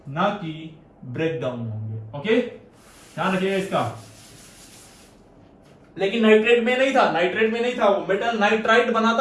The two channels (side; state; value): both; identical; correlation 1.00